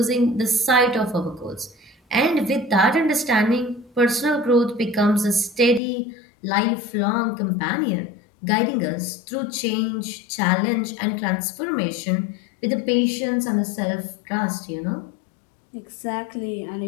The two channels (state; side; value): drops out; right; at 5.8 s